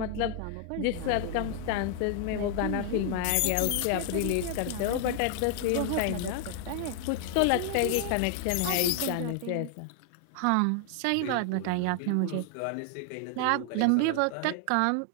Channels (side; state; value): both; different; correlation 0.00